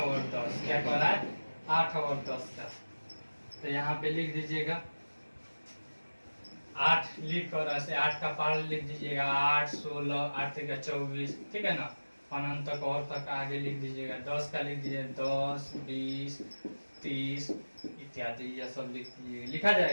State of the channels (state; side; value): inverted; both; correlation -1.00